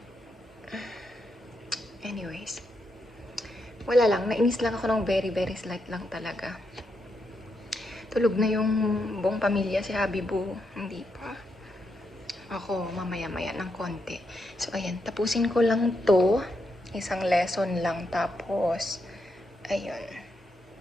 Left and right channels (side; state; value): both; normal; correlation 0.82